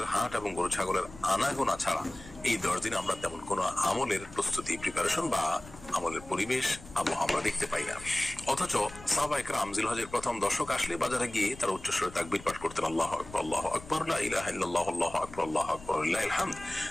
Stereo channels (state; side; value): noise; left; rumble, 18 dB below the sound